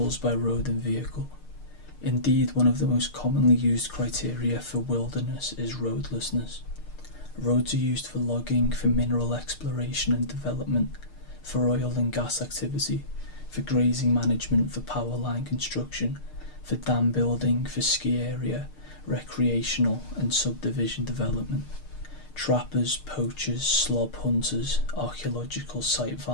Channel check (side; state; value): right; late; 6.6 ms